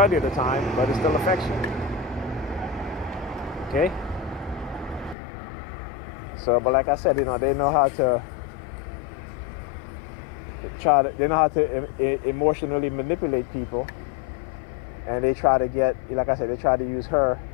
of the time, but it still affects you. Okay? So, but like I said, they know how to emotionally manipulate people, and they try to get, like I said, they try to use her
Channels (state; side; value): drops out; right; at 5.2 s